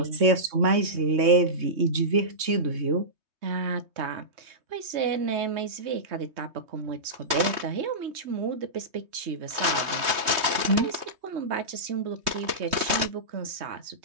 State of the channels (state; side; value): late; left; 3.2 ms